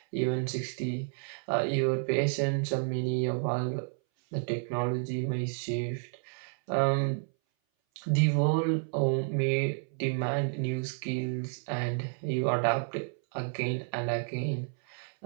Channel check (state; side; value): silent; left; 57 dB below the other